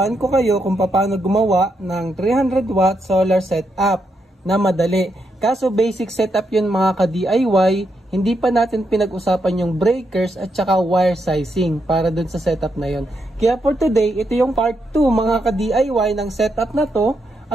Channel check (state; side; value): normal; both; correlation 0.81